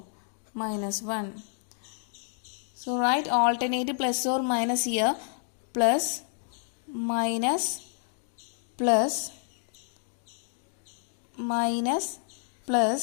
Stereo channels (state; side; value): silent; right; 58 dB below the other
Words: minus 1. So write alternate plus or minus here, plus minus plus minus